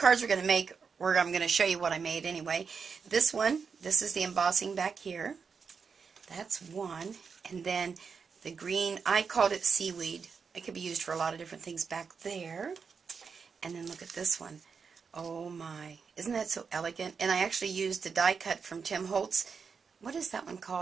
we're going to make, or I'm going to show you what I made anyway. This one, this is the embossing back here. That's one, and then the green, I called it seaweed. It could be used for a lot of different things back there. And then look at this one. Oh my, isn't that so elegant? And I actually used the die cut from Tim Holtz. What is that one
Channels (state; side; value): quieter; left; 5.7 dB